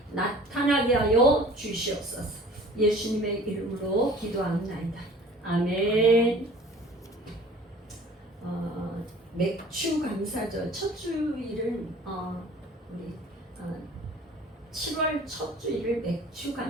나타나게 하여 주시옵소서. 예수님의 이름으로 기도합니다. 아멘. 맥주 감사절 첫 주일은 우리 7월 첫 주일을 맥주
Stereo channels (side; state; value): both; normal; correlation 0.47